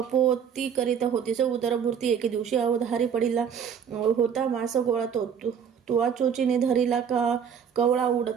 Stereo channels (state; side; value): quieter; left; 7.6 dB